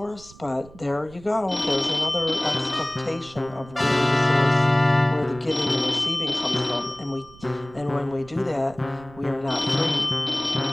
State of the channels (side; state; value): right; noise; rumble, 21 dB below the sound